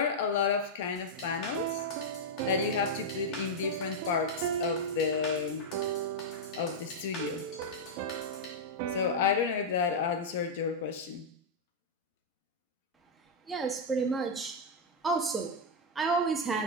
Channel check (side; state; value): both; normal; correlation -0.03